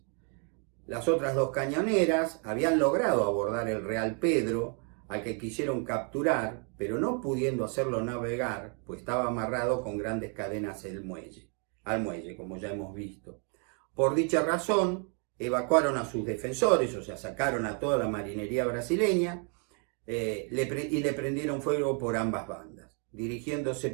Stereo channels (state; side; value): quieter; left; 39.7 dB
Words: Las otras 2 cañoneras habían logrado abordar el Real Pedro, al que quisieron capturar, pero no pudiendo hacerlo navegar, pues estaba amarrado con grandes cadenas al muelle, como ya hemos visto. Por dicha razón, evacuaron a sus defensores, o sea, sacaron a toda la marinería brasileña, y le prendieron fuego por ambas bandas, dirigiéndose